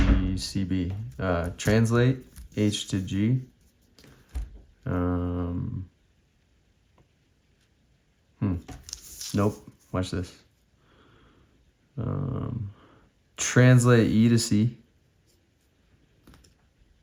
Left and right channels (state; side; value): identical; both; correlation 1.00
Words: Translate H to G. Nope. Watch this. Translate E to C.